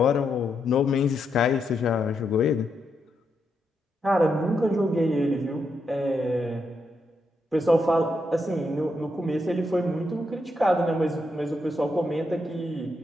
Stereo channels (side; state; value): both; normal; correlation 0.81